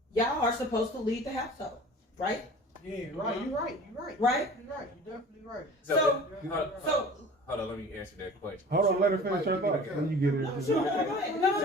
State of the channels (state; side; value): normal; both; correlation 0.42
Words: y'all are supposed to lead the household, right? Yeah, right. You're right. Right? You're right. You're definitely right. So, Hold on, let me answer that question. Hold on, let her finish her thought. When you get it.